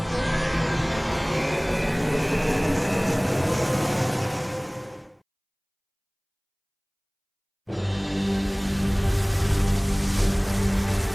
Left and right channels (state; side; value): identical; both; correlation 1.00